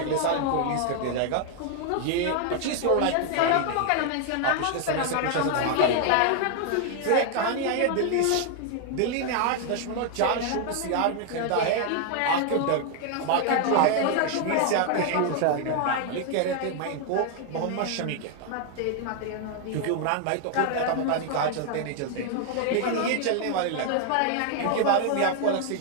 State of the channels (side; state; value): both; different; correlation 0.00